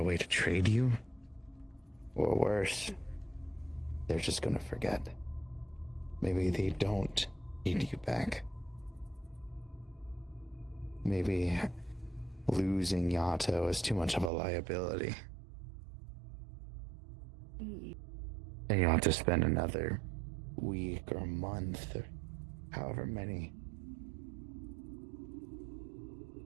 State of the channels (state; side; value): drops out; left; at 14.3 s